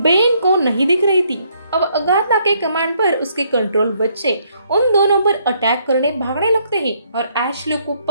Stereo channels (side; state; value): both; inverted; correlation -0.70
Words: को नहीं दिख रही थी। अब अगाथा के कमांड पर उसके कंट्रोल बच्चे उन दोनों पर अटैक करने भागने लगते हैं और एशली को